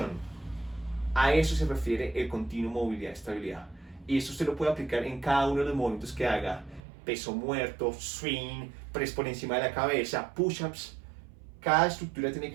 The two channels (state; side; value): drops out; left; at 6.8 s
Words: A eso se refiere el continuo movilidad y estabilidad. Y esto usted lo puede aplicar en cada uno de los movimientos que haga. Peso muerto, swing, press por encima de la cabeza, push-ups. Cada estructura tiene que